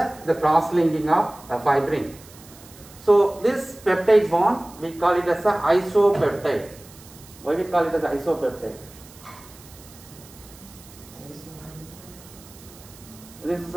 cross linking of a fibrin. So this peptide bond we call it as a isopeptide. Why we call it as isopeptide? This is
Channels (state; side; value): noise; right; hiss, 21 dB below the sound